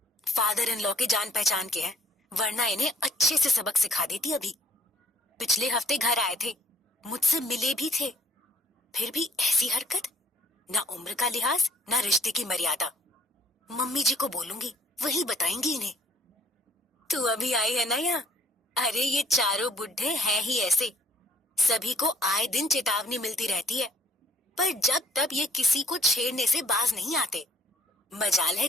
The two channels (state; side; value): normal; both; correlation 0.63